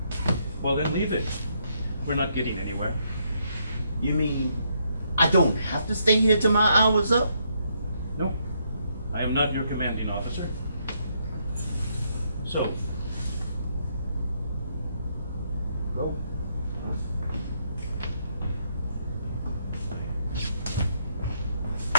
Well, then leave it. We're not getting anywhere. You mean I don't have to stay here till my hour's up? No, I am not your commanding officer. So, go.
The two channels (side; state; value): both; inverted; correlation -0.74